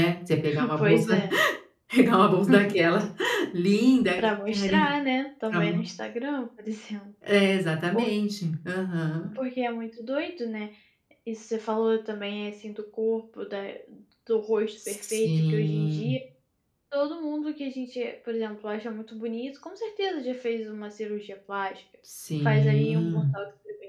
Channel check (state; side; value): identical; both; correlation 1.00